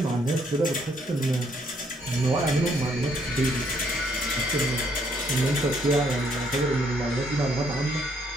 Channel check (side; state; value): both; normal; correlation 0.69